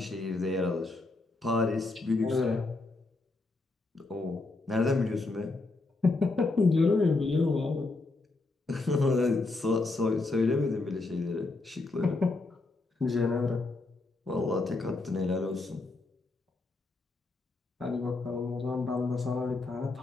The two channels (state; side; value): quieter; right; 3.4 dB